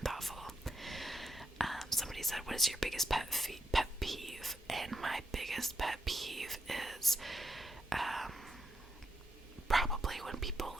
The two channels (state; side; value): normal; both; correlation 0.85